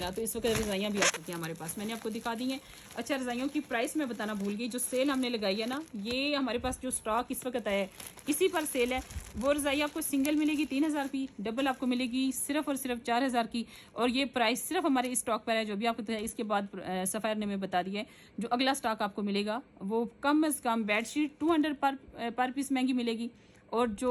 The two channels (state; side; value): identical; both; correlation 1.00